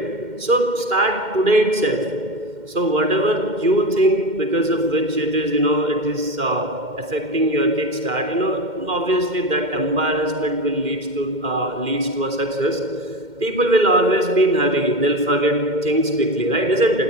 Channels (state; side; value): late; left; 2.1 ms